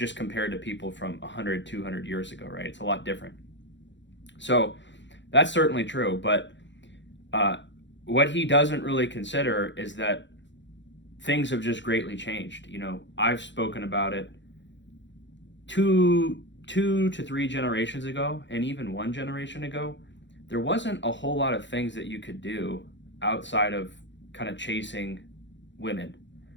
compared to people from 100, 200 years ago, right? It's a lot different. So that's certainly true, but what he doesn't really consider is that things have just greatly changed. I've spoken about it two to three generations ago, and even one generation ago. There wasn't a whole lot of things that you could do outside of kind of chasing women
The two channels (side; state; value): right; late; 0.53 ms